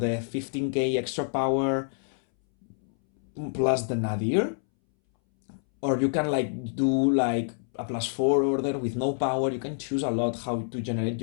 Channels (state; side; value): silent; right; 60 dB below the other